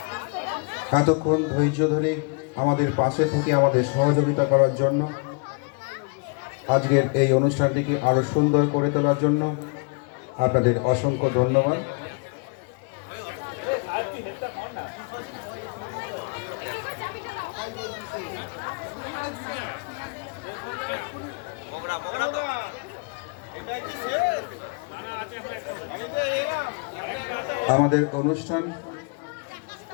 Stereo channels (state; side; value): quieter; right; 32.6 dB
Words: এতক্ষণ ধৈর্য ধরে আমাদের পাশে থেকে আমাদের সহযোগিতা করার জন্য, আজকের এই অনুষ্ঠানটিকে আরো সুন্দর করে তোলার জন্য আপনাদের অসংখ্য ধন্যবাদ। আমাদের অনুষ্ঠান